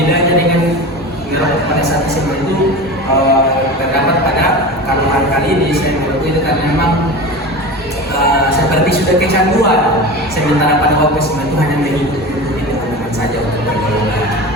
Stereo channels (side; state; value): both; normal; correlation 0.30